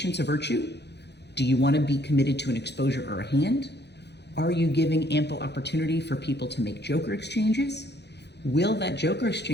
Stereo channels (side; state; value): right; late; 0.49 ms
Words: a virtue? Do you want to be committed to an exposure or a hand? Are you giving ample opportunity for people to make joker exchanges? Will that joker